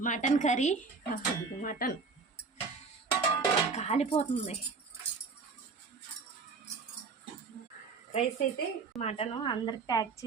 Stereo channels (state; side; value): quieter; left; 4.6 dB